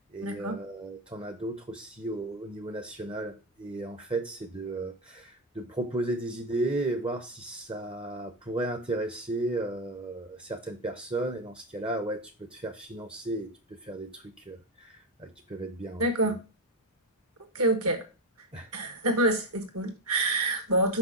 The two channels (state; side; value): normal; both; correlation 0.10